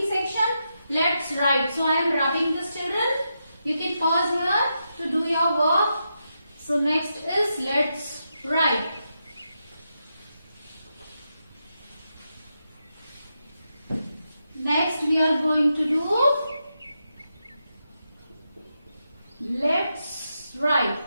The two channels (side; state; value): both; inverted; correlation -0.85